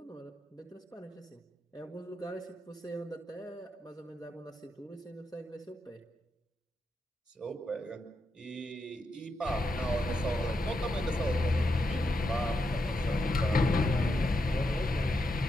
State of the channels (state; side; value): normal; both; correlation 0.84